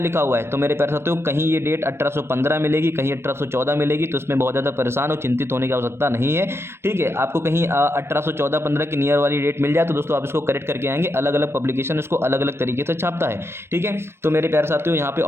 हुआ है। तो मेरे प्यारे साथियों कहीं ये डेट 1815 मिलेगी, कहीं 1814 मिलेगी, तो इसमें बहुत ज़्यादा परेशान और चिंतित होने की आवश्यकता नहीं है, ठीक है। आपको कहीं 1814-15 की नियर वाली डेट मिल जाए तो दोस्तों आप इसको करेक्ट करके आएंगे। अलग अलग पब्लिकेशन इसको अलग अलग तरीके से छापता है, ठीक है। तो मेरे प्यारे साथियों यहाँ पे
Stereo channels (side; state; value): left; late; 0.12 ms